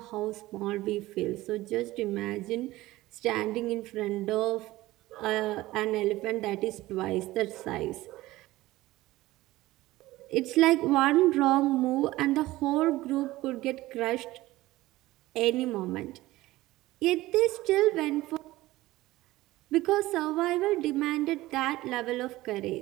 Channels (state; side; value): quieter; left; 17.7 dB